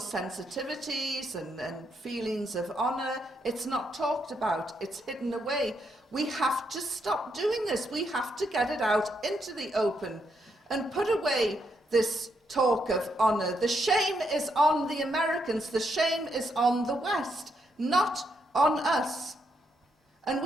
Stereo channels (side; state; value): both; normal; correlation 0.78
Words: sensitivities and feelings of honour, it's not talked about, it's hidden away. We have to stop doing this. We have to get it out into the open and put away this talk of honour. The shame is on the Americans, the shame is on the West, not on us. And